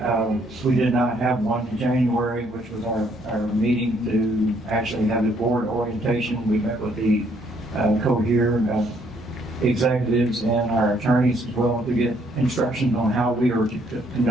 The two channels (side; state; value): both; normal; correlation 0.68